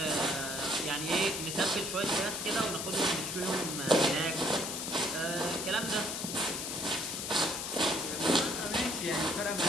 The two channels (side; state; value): left; noise; hiss, 4 dB below the sound